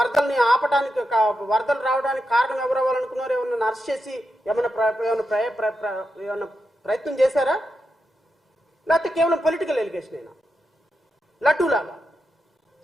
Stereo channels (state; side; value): normal; both; correlation 0.87